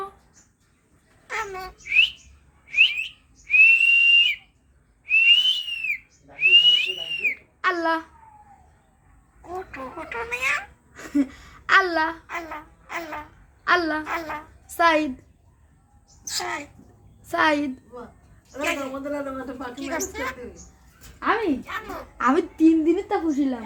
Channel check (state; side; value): identical; both; correlation 1.00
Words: আমু আল্লাহ কুটু কুটু মিয়া আল্লাহ আল্লাহ আল্লাহ আল্লাহ আল্লাহ সাইদ সাই সাইদ কি করছে আমি আমু আমি 3 দিনের তা খুশিলাম